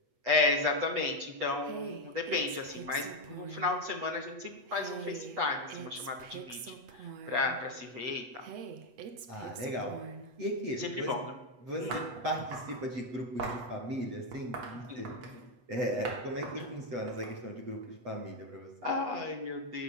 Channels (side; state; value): left; late; 8.2 ms